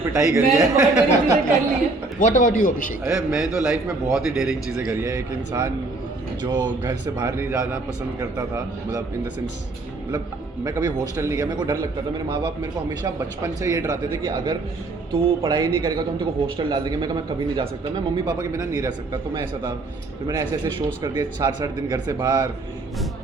पिटाई करी मैंने है। बहुत डेयरिंग चीज़ें कर ली है। व्हाट अबाउट यू अभिषेक? अरे मैं तो लाइफ में बहुत ही डेयरिंग चीज़ें करी है। एक इंसान जो घर से बाहर नहीं जाना पसंद करता था, मतलब इन द सेंस, मतलब मैं कभी हॉस्टल नहीं गया, मेरे को डर लगता था। मेरे माँ बाप मेरे को हमेशा बचपन से ये डराते थे कि अगर तू पढ़ाई नहीं करेगा तो हम तेरे को हॉस्टल डाल देंगे। मैं कभी नहीं जा सकता, मैं मम्मी पापा के बिना नहीं रह सकता। तो मैं ऐसा था, फिर मैंने ऐसे ऐसे शोज़ कर दिए 4-8 दिन घर से बाहर।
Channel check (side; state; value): left; quieter; 3.2 dB